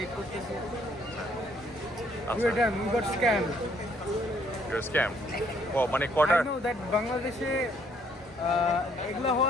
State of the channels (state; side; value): normal; both; correlation 0.66